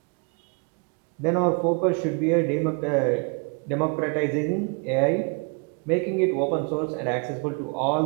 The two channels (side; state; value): left; quieter; 34.8 dB